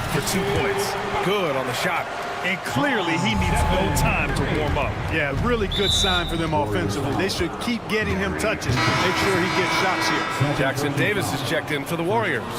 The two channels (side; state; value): both; identical; correlation 1.00